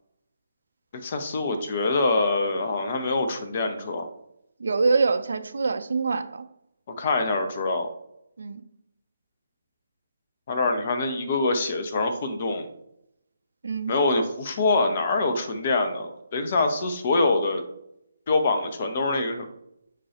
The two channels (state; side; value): inverted; both; correlation -0.73